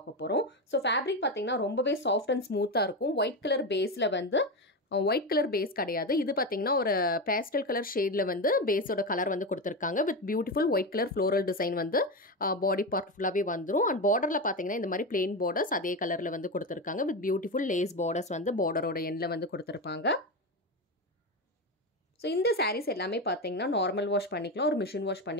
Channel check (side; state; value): both; normal; correlation 0.16